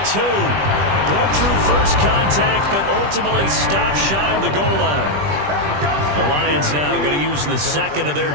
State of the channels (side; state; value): left; late; 20 ms